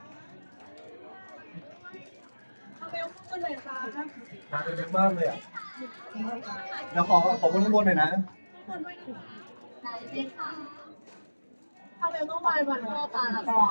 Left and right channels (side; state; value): both; inverted; correlation -1.00